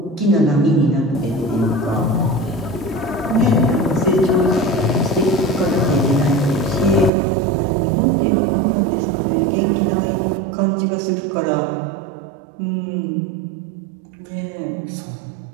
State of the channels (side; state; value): left; drops out; at 7.1 s